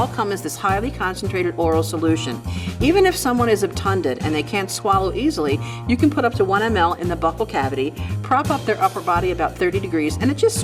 come as this highly concentrated oral solution. Even if someone is obtunded and they can't swallow easily, you can put up to 1 ml in the buccal cavity, prop up their upper body about 30 degrees, and it just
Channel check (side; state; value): both; identical; correlation 1.00